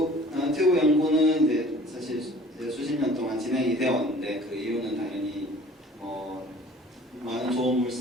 연구는 이제 사실 이제 수십 년 동안 진행이 되어 왔는데, 그 이유는 당연히 많은 좋은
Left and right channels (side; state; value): both; normal; correlation 0.49